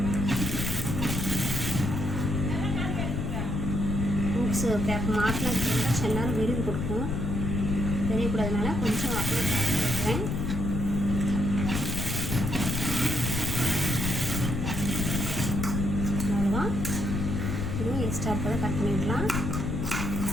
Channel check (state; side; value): noise; left; rumble, 1 dB below the sound